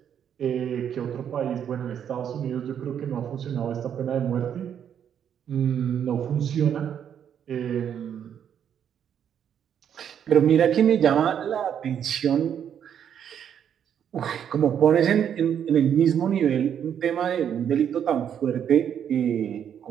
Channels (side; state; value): left; quieter; 8.8 dB